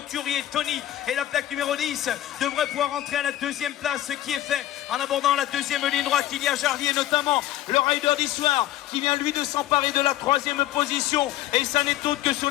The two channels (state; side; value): quieter; right; 13.8 dB